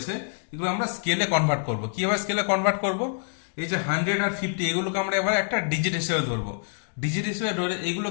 এগুলো আমরা স্কেলে কনভার্ট করব। কীভাবে স্কেলে কনভার্ট করব? এই যে 100 আর 50 এগুলোকে আমরা এবার একটা ডিজিট হিসেবে ধরবো। ডিজিট হিসেবে ধরে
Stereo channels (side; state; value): right; silent; digital silence